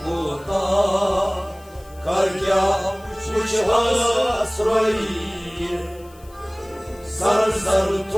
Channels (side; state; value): left; noise; hiss, 26 dB below the sound